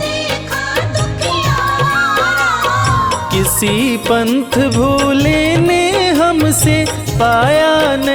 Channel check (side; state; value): both; identical; correlation 1.00